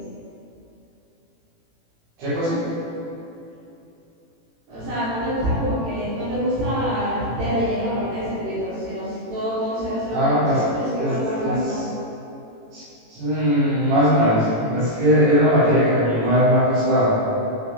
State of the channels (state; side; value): late; left; 18 ms